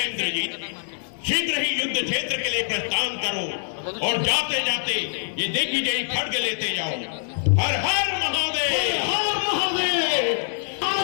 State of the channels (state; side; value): silent; right; 62 dB below the other